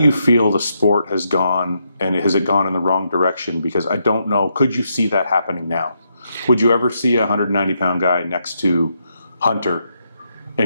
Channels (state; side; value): inverted; both; correlation -0.80